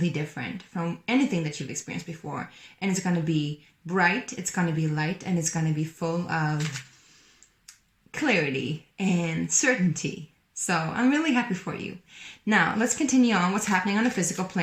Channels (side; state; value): both; identical; correlation 1.00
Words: different from anything that you've experienced before. And it's going to be bright, it's going to be light, and it's going to be full of clarity and certainty. So I'm really happy for you. Now, let's continue on what's happening on the physical